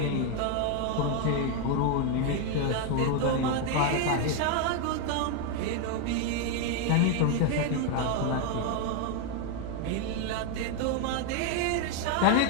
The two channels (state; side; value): different; both; correlation 0.01